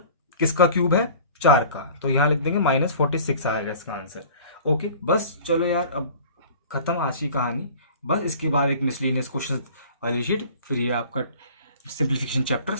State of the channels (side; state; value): both; inverted; correlation -0.45